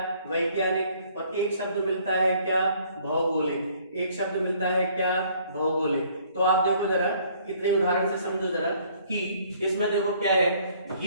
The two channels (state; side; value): inverted; both; correlation -0.60